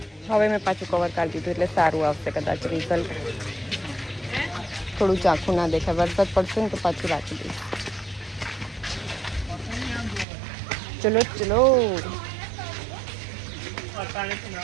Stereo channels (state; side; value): drops out; left; at 10.2 s